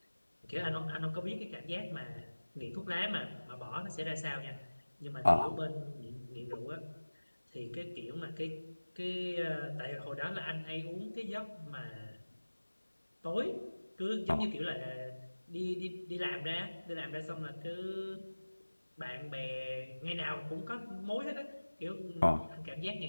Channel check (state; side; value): inverted; both; correlation -1.00